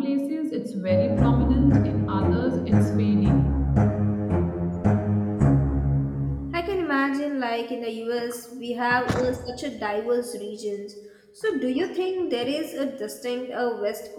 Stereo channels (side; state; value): both; identical; correlation 1.00